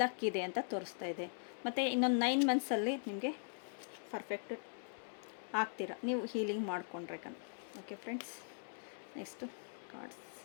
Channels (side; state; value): right; silent; digital silence